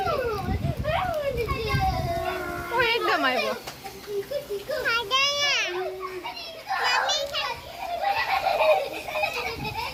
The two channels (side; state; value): both; identical; correlation 1.00